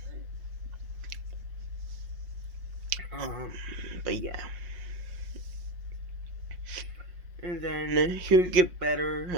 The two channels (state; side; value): late; left; 5.5 ms